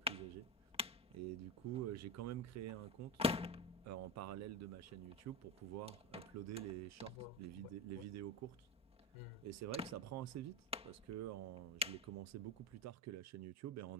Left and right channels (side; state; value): both; normal; correlation 0.18